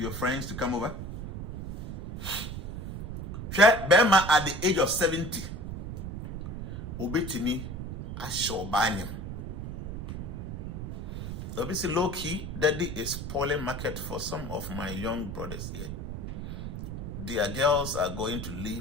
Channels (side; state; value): right; noise; rumble, 6 dB below the sound